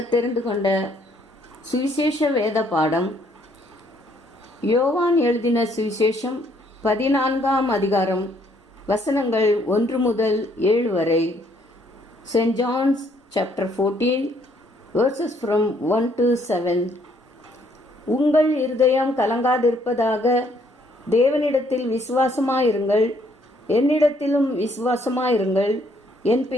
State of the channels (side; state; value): both; normal; correlation 0.67